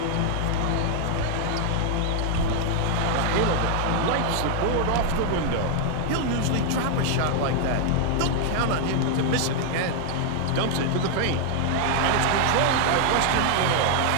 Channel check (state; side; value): different; both; correlation 0.00